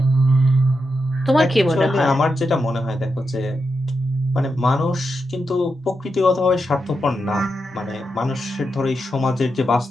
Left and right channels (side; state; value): both; normal; correlation 0.86